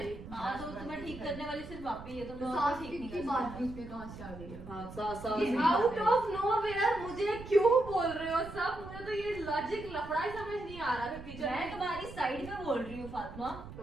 हाँ, तो तुम्हें ठीक करने वाली सिर्फ आप ही है, तुम तो और सास ठीक की नहीं की कर बात सकते। बीच में कहाँ से आ गई है? हाँ, सास आउट ऑफ नोवेयर मुझे क्यों बोल रहे हो सब? मुझे तो ये लॉजिक लफड़ा ही समझ नहीं आ रहा कि मैं तुम्हारी साइड में बोल रही हूँ फातिमा, तो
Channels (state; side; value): noise; right; rumble, 13 dB below the sound